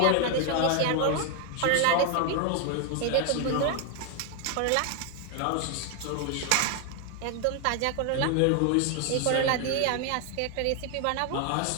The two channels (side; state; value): both; different; correlation 0.00